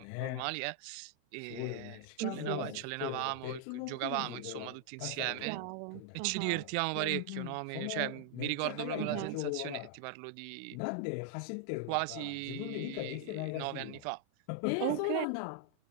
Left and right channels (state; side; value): different; both; correlation 0.00